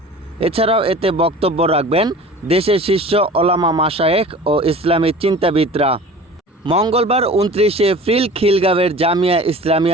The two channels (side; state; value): both; normal; correlation 0.41